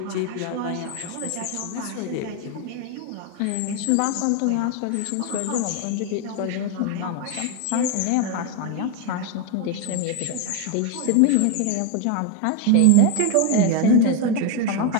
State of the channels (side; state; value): both; different; correlation 0.02